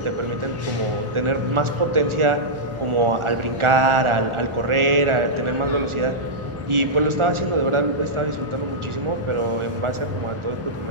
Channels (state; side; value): late; left; 1.4 ms